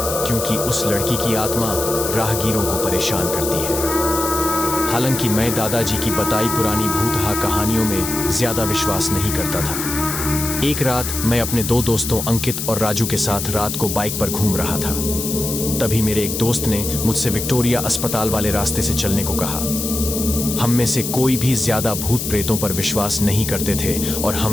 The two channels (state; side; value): noise; left; hiss, 4 dB below the sound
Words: क्योंकि उस लड़की की आत्मा राहगीरों को परेशान करती है। हालांकि मैं दादाजी की बताई पुरानी भूतहा कहानियों में ज्यादा विश्वास नहीं करता था। एक रात मैं अपने 2 दोस्तों अंकित और राजू के साथ रात को बाइक पर घूम रहा था। तभी मेरे एक दोस्त ने मुझसे विक्टोरिया अस्पताल वाले रास्ते से चलने को कहा। हम में से कोई भी ज्यादा भूत प्रेतों पर विश्वास नहीं करते थे और